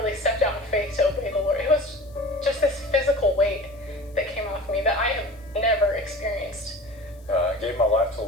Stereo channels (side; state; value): left; noise; hiss, 30 dB below the sound